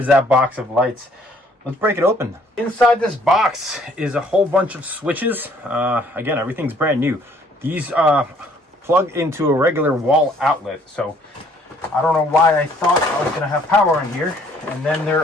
that box of lights. Let's break it open. Inside this box is a whole bunch of switches. Again, everything's brand new. These plug into a regular wall outlet, so I don't know why I thought I was gonna have power in here. And then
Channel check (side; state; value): both; normal; correlation 0.61